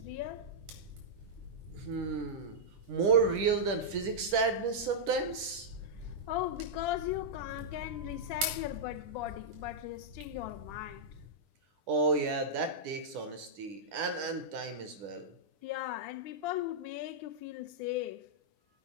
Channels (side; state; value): left; late; 10 ms